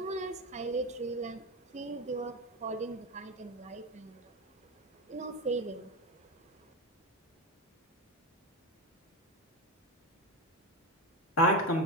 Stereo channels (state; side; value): normal; both; correlation 0.17